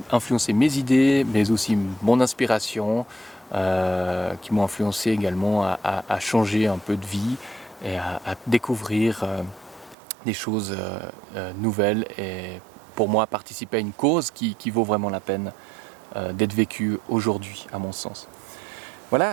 mes idées, mais aussi mon inspiration, qui m'ont influencé également à changer un peu de vie et à découvrir des choses nouvelles et pour moi participer à une cause qui vaut vraiment la peine d'être vécue aujourd'hui à mon sens.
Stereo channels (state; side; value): drops out; left; at 10.0 s